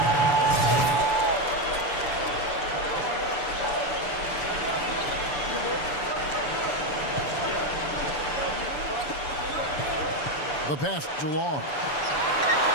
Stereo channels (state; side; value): late; right; 7.1 ms